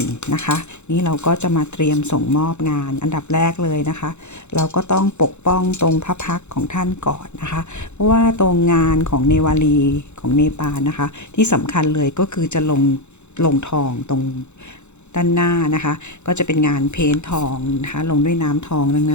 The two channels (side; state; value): right; late; 0.83 ms